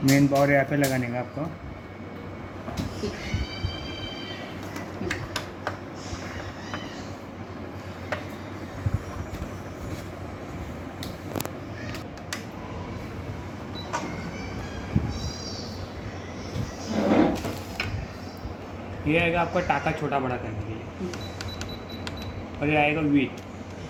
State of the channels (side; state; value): both; identical; correlation 1.00